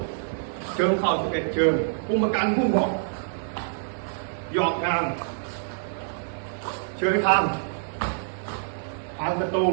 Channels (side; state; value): left; silent; digital silence